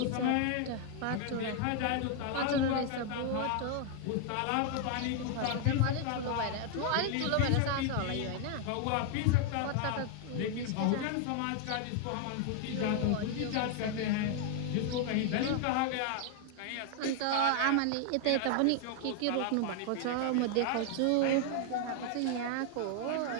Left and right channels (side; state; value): both; different; correlation 0.00